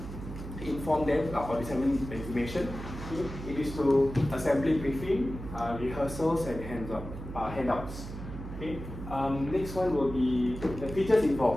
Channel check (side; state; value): right; noise; hum, 10 dB below the sound